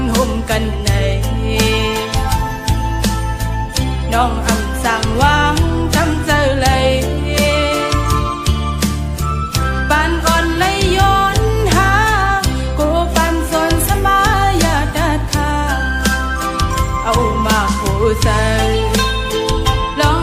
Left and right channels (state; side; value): identical; both; correlation 1.00